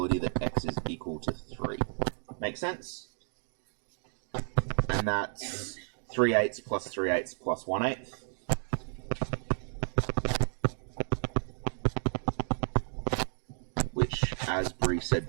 that x is equal to 3. Make sense? And that's 3/8 plus 3/8 plus 1/8. Which, as Bree said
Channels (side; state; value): left; silent; 56 dB below the other